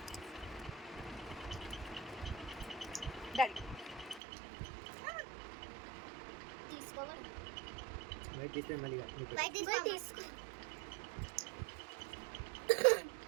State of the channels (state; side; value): drops out; left; at 4.2 s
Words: Daddy తీసుకోవాలి. వైట్ తీస్తే మళ్ళీ వైట్ తీసుకో.